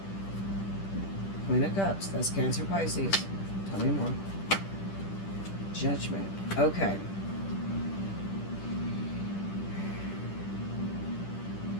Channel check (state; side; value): late; right; 10 ms